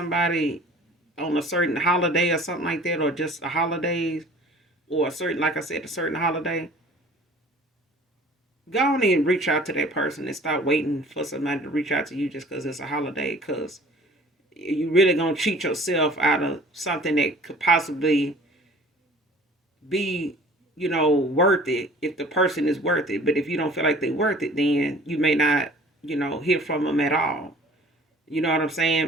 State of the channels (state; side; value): normal; both; correlation 0.48